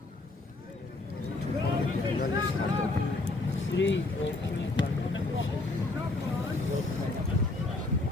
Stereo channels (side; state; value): right; quieter; 3.1 dB